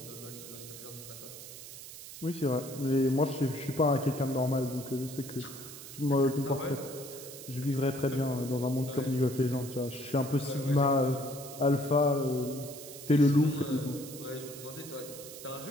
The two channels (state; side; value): noise; right; hiss, 13 dB below the sound